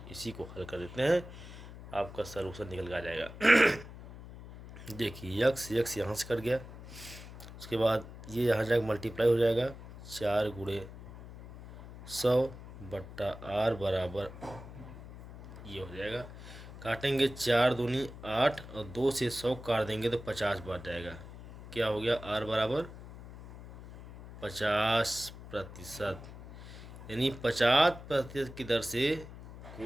इसी को हल कर देते हैं, आपका सलूशन निकल के आ जाएगा। देखिए यक्स यहाँ से कट गया, उसके बाद ये यहाँ जाकर मल्टीप्लाई हो जाएगा। 4 गुणे 100 बट्टा r बराबर ये हो जाएगा। काटेंगे 4 दूनी 8 और 2 से 100 काट देंगे तो 50 बच जाएगा। क्या हो गया, r बराबर 50%, यानी 50% की दर से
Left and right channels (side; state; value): left; noise; hum, 14 dB below the sound